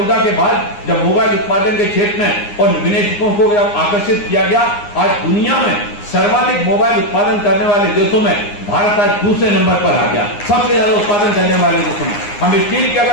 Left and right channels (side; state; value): right; late; 9.7 ms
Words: के बाद जब मोबाइल उत्पादन के क्षेत्र में और विनिवेशकों को जब आकर्षित किया गया, आज दुनिया में सर्वाधिक मोबाइल उत्पादन करने वाले देशों में भारत आज दूसरे नंबर पर आ गया, सबसे ज्यादा उत्पादन करने वाले देशों में। हम स्टील की